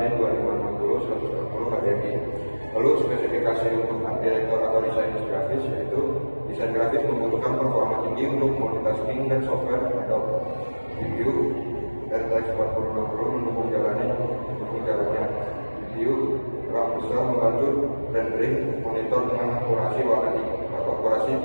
2560 120 HDMI. Lalu spesifikasi untuk art director atau desain grafis yaitu desain grafis membutuhkan performa tinggi untuk multitasking dan software Adobe GPU RTX 4060 mendukung jalannya GPU RAM besar membantu rendering monitor dengan akurasi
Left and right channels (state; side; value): inverted; both; correlation -1.00